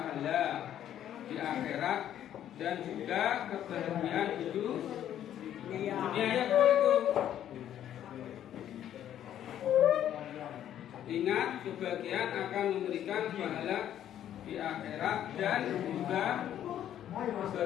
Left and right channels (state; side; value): quieter; right; 10.9 dB